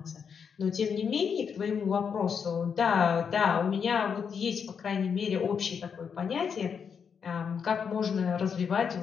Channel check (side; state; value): right; quieter; 6.7 dB